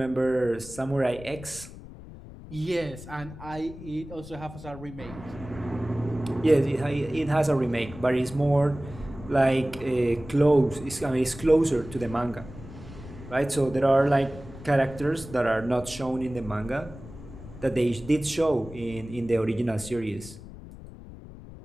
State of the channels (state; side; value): noise; left; rumble, 15 dB below the sound